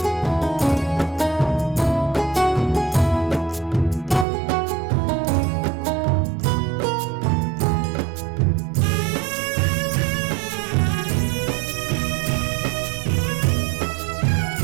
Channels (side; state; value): left; drops out; at 4.2 s